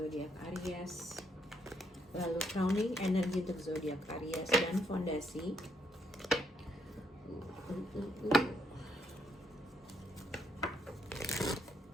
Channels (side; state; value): both; normal; correlation 0.73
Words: Aries. Lalu crowning energi untuk zodiak Aries dan fondasi.